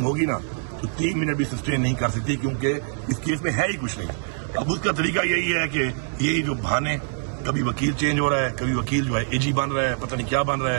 ہوگی نا تو 3 منٹ بھی سسٹین نہیں کر سکتی، کیونکہ اس کیس میں ہے ہی کچھ نہیں۔ اب اس کا طریقہ یہی ہے کہ یہی جو بہانے، کبھی وکیل چینج ہو رہا ہے، کبھی وکیل جو ہے اے جی بن رہا ہے، پتہ نہیں کیا بن رہا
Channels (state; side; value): silent; left; 62 dB below the other